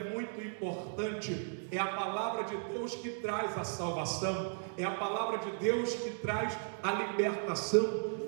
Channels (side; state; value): left; silent; digital silence